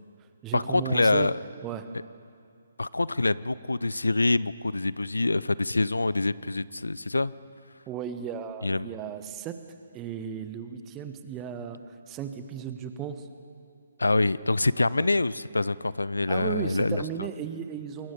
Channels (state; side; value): inverted; both; correlation -0.88